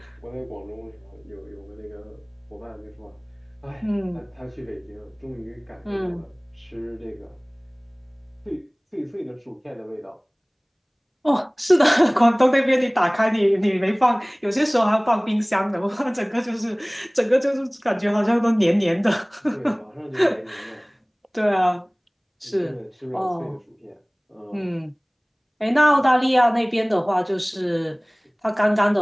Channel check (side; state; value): both; identical; correlation 1.00